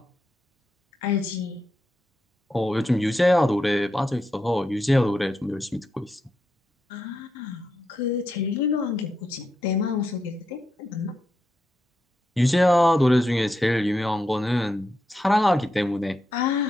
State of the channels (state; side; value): normal; both; correlation 0.84